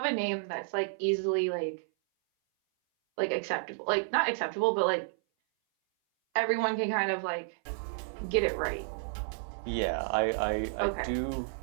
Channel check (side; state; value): left; silent; 56 dB below the other